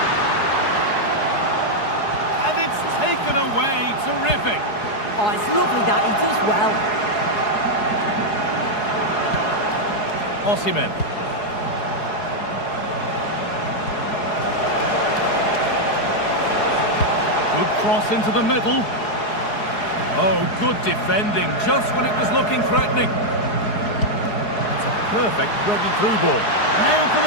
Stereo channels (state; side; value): late; right; 4.8 ms